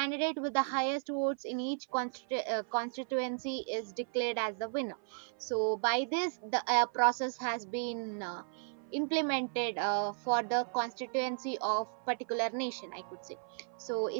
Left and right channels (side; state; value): left; silent; 55 dB below the other